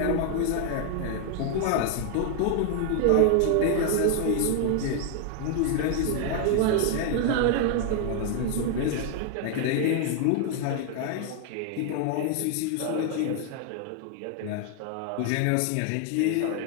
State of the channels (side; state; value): both; different; correlation 0.00